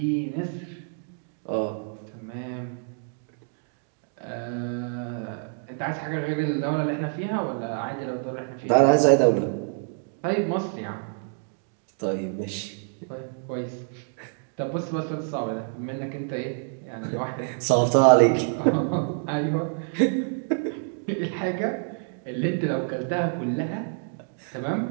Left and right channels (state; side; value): silent; left; 60 dB below the other